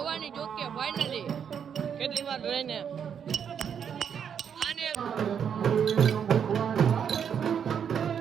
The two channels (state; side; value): quieter; left; 7.8 dB